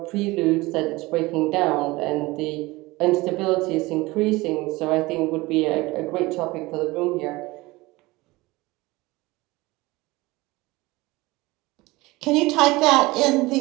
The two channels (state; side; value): quieter; left; 21.2 dB